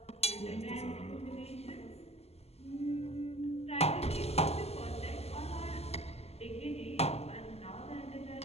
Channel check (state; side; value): late; right; 0.30 ms